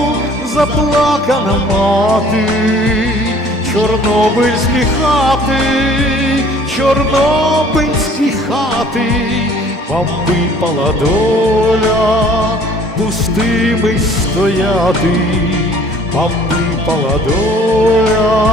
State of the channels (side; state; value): both; normal; correlation 0.54